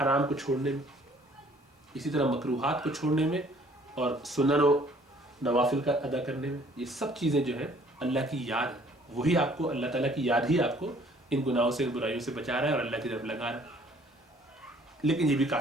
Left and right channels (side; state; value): both; normal; correlation 0.58